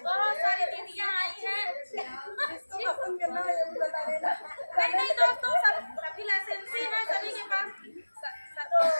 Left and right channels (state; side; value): inverted; both; correlation -1.00